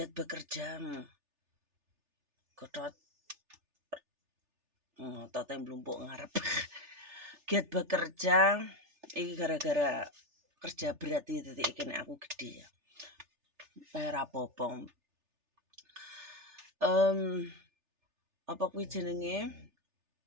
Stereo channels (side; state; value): left; late; 3.4 ms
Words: bekerja. Godot otote mlumpuk ngarep. Giat bekerja iki gara-gara kerja berat iki titik iki nek aku gedhe ya. Ora apa-apa. Apa kuwi jenenge?